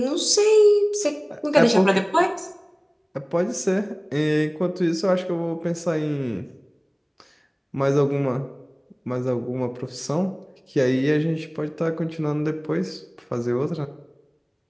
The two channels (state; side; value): identical; both; correlation 1.00